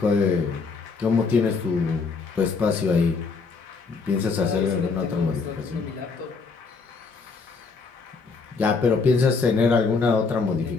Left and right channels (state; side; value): quieter; right; 4.6 dB